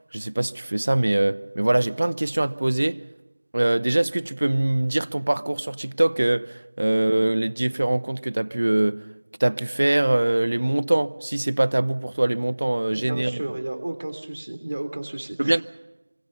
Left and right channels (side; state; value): both; inverted; correlation -1.00